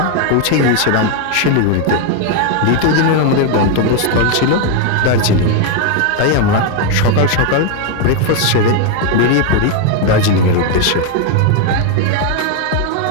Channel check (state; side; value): different; both; correlation 0.01